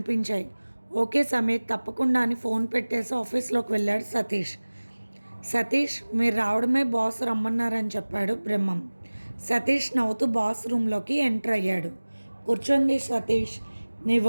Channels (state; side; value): inverted; both; correlation -1.00